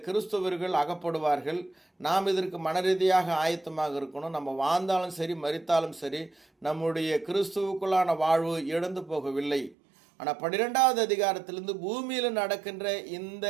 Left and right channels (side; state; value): left; drops out; at 9.8 s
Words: கிறிஸ்தவர்கள் அகப்படுவார்கள். நாம் இதற்கு மனரீதியாக ஆயத்தமாக இருக்கணும். நம்ம வாழ்ந்தாலும் சரி மரித்தாலும் சரி நம்முடைய கிறிஸ்துவுக்குள்ளான வாழ்வு இழந்து போகவில்லை. ஆனால் 12வது அதிகாரத்திலிருந்து பூமியில் நடக்கின்ற இந்த